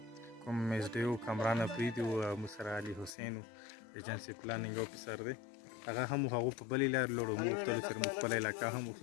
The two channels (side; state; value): right; drops out; at 3.2 s